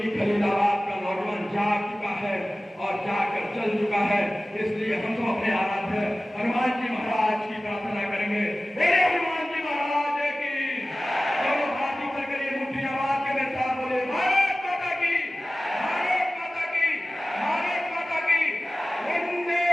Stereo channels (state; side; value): normal; both; correlation 0.96